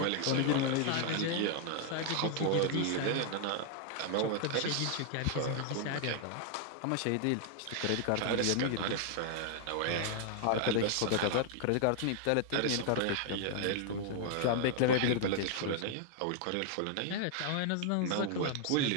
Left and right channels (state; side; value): different; both; correlation 0.00